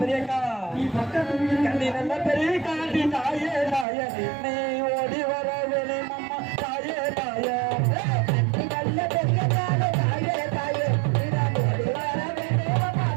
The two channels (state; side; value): drops out; left; at 3.9 s